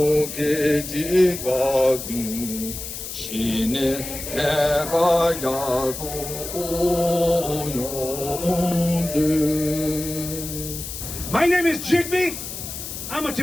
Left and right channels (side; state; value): left; noise; hiss, 8 dB below the sound